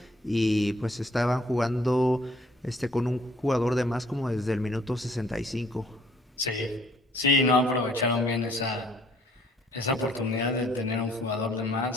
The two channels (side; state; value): both; normal; correlation 0.60